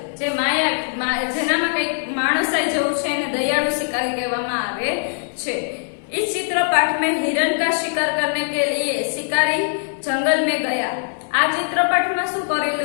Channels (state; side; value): silent; right; 65 dB below the other